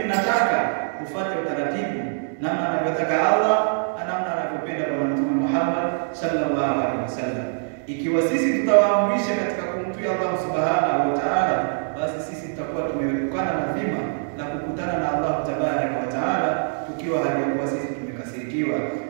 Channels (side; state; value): left; silent; digital silence